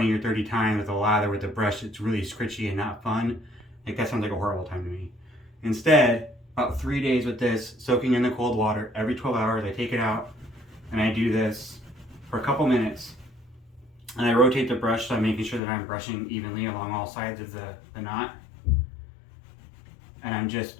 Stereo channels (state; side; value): drops out; right; at 15.6 s